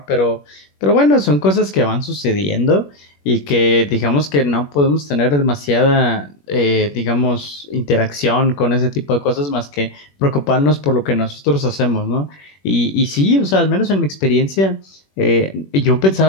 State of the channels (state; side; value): late; right; 21 ms